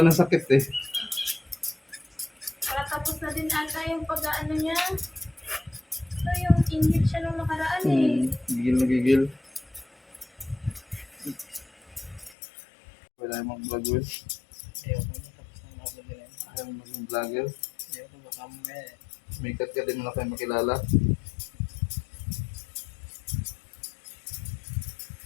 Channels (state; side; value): drops out; right; at 12.4 s